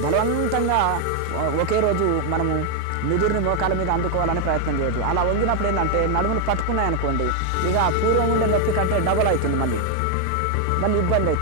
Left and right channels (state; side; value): different; both; correlation 0.00